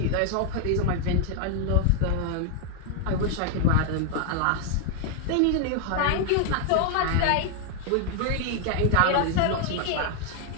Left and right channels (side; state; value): both; different; correlation 0.01